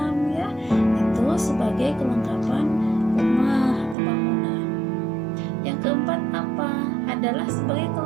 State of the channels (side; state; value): left; drops out; at 4.0 s